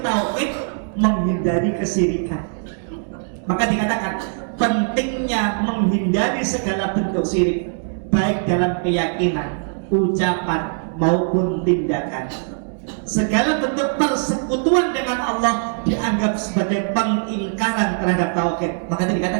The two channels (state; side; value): silent; left; digital silence